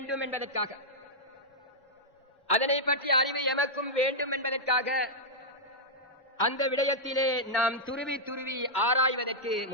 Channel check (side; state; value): both; normal; correlation -0.07